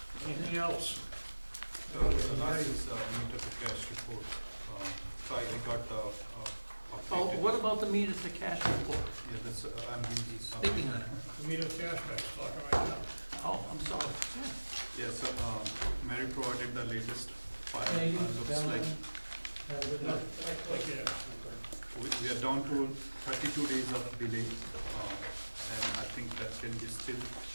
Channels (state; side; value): inverted; both; correlation -1.00